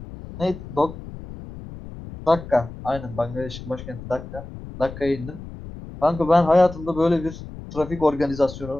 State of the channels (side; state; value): left; noise; rumble, 13 dB below the sound